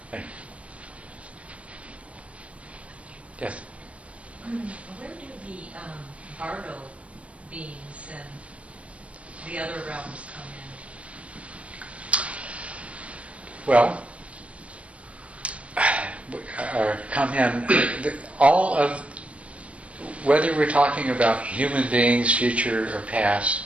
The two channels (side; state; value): left; late; 0.063 ms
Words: thing. Yes? Where do the Bardo beings and the other realms come in? Well, come in, all of, whether we're talking about human beings, future or past,